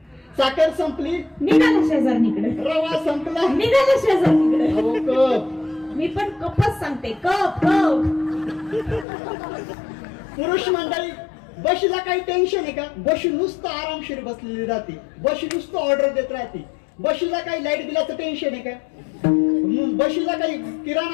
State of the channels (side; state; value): right; drops out; at 9.1 s